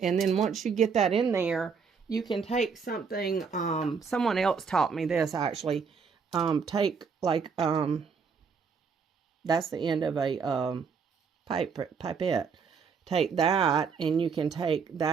then once you get that in there, you can take something, someone else taught me this actually, take like, that's the end of a pipette. Take that, and you can take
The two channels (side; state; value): left; quieter; 5.8 dB